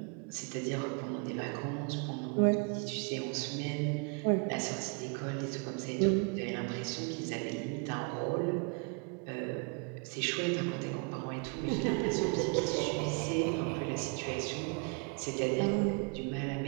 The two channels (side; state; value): left; quieter; 33.6 dB